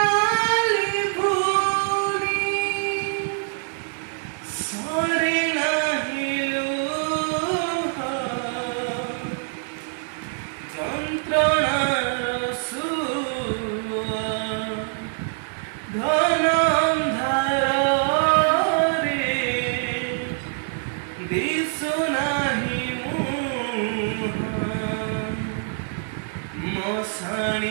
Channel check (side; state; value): left; silent; 60 dB below the other